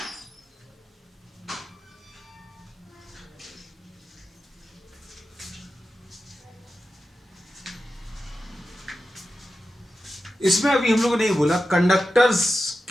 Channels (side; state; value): both; normal; correlation 0.92